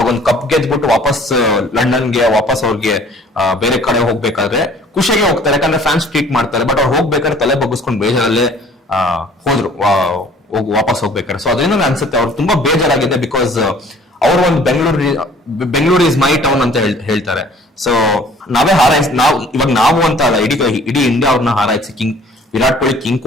ಒಂದು ಕಪ್ ಗೆದ್ಬಿಟ್ಟು ವಾಪಸ್ ಲಂಡನ್ಗೆ ವಾಪಸ್ ಅವ್ರಿಗೆ ಬೇರೆ ಕಡೆ ಹೋಗ್ಬೇಕಾದ್ರೆ ಖುಷಿಯಾಗಿ ಹೋಗ್ತಾರೆ, ಯಾಕಂದ್ರೆ ಫ್ಯಾನ್ಸ್ ಟ್ರೀಟ್ ಮಾಡ್ತಾರೆ. ಬಟ್ ಅವ್ರು ಹೋಗ್ಬೇಕಾದ್ರೆ ತಲೆ ಬಗ್ಗಿಸ್ಕೊಂಡು ಬೇಜಾರಲ್ಲೇ ಹೋದ್ರು ವಾಪಸ್ ಹೋಗ್ಬೇಕಾದ್ರೆ. ಸೊ ಅದರಿಂದ ಅನ್ಸುತ್ತೆ ಅವ್ರು ತುಂಬಾ ಬೇಜಾರಾಗಿದೆ. ಬಿಕಾಸ್ ಅವರು ಒಂದು ಬೆಂಗಳೂರು ಇಸ್ ಮೈ ಟೌನ್ ಅಂತ ಹೇಳ್ತಾರೆ. ಸೊ ನಾವೇ ನಾವು ಅಂತ ಅಲ್ಲ, ಇಡೀ ಇಂಡಿಯಾ ಅವ್ರನ್ನ ಹಾರೈಸಿ ವಿರಾಟ್ ಕೊಹ್ಲಿ ಕಿಂಗ್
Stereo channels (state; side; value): normal; both; correlation 0.53